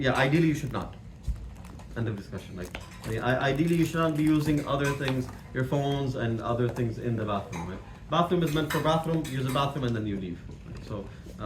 Ideally you should not. End of discussion. Like, ideally you should not be using other things, your phones and other things in the bathroom. Right? Bathroom is meant for bathroom. Use the bathroom and then you leave. Right? So,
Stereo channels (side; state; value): both; identical; correlation 1.00